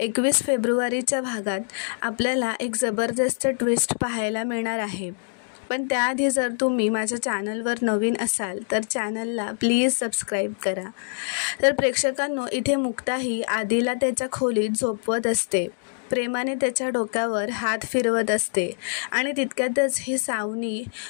फेब्रुवारीच्या भागात आपल्याला एक जबरदस्त ट्विस्ट पाहायला मिळणार आहे. पण त्याआधी जर तुम्ही माझ्या चॅनलवर नवीन असाल तर चॅनलला प्लीज सबस्क्राईब करा. तर प्रेक्षकांनो, इथे मुक्ता ही आदिला त्याच्या खोलीत झोपवत असते. प्रेमाने त्याच्या डोक्यावर हात फिरवत असते आणि तितक्यातच ही सावनी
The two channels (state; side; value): silent; right; digital silence